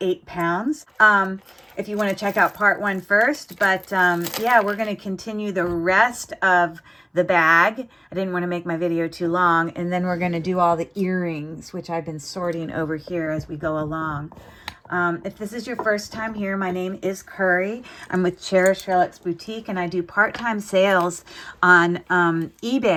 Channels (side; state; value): both; identical; correlation 1.00